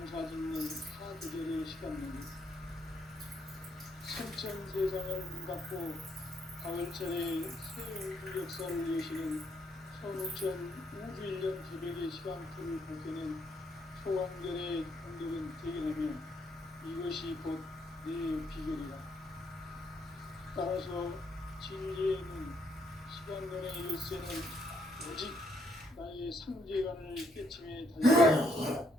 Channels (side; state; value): both; normal; correlation 0.72